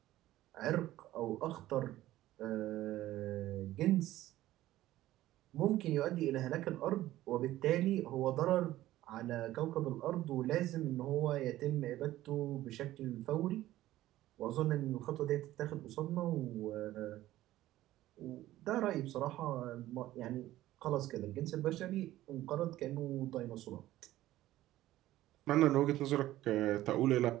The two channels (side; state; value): left; quieter; 15.0 dB